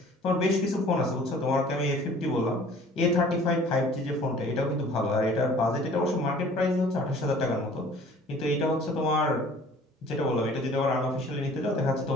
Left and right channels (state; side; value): normal; both; correlation 0.50